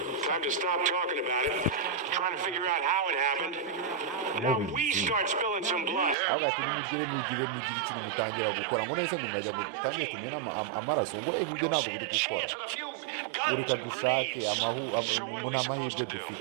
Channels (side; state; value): left; drops out; at 6.2 s